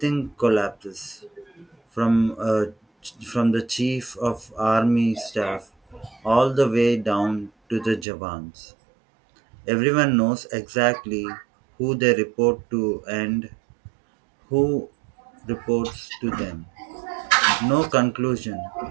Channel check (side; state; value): left; drops out; at 8.1 s